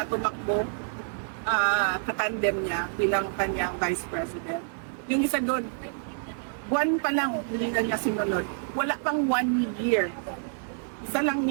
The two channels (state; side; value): silent; left; digital silence